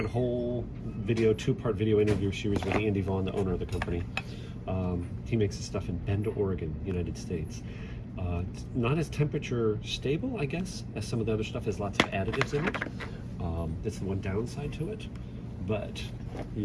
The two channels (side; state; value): both; identical; correlation 1.00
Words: a whole video, two-part video interview series with Andy Vaughn, the owner of the company. He makes this stuff in Bend, Oregon, United States. It's not as temperature stable, I guess, as some of the other stuff. Has lots of additives in it. That's the one downside to it. But